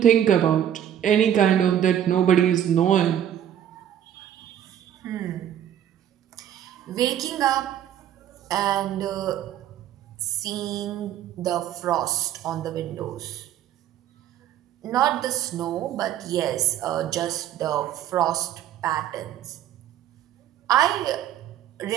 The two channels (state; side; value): quieter; left; 10.5 dB